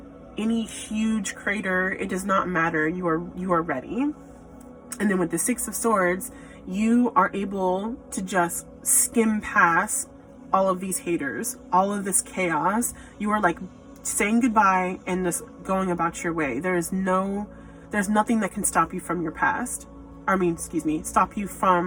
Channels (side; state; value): both; identical; correlation 1.00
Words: any huge crater, it does not matter. You are ready. And then with the 6 of Swords, you are able to just skim past all of these haters, all of this chaos. You are like saying goodbye and just going about your way. There's nothing that can stop you from your past. Stop you